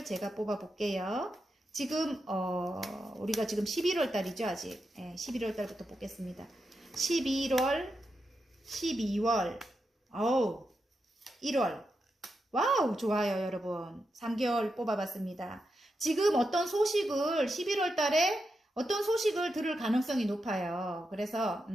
제가 뽑아 볼게요. 지금 우리가 지금 11월 달이죠, 아직. 11월 달부터 뽑겠습니다. 11월, 12월, 1월. 와우, 좋아요, 여러분. 3개월 뽑아봤습니다. 지금 어떤 소식을 11월 달에 어떤 소식을 들을 가능성이 높아요. 그래서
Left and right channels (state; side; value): normal; both; correlation 0.86